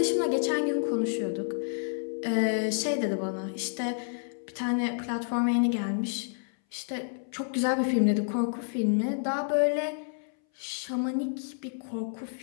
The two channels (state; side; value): silent; right; 58 dB below the other